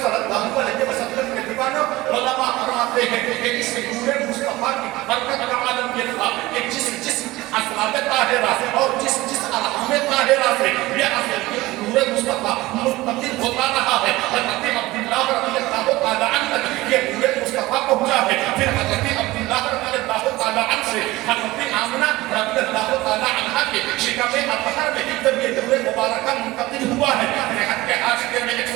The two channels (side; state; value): left; quieter; 19.0 dB